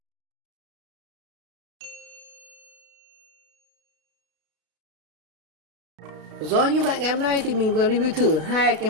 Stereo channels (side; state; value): left; late; 33 ms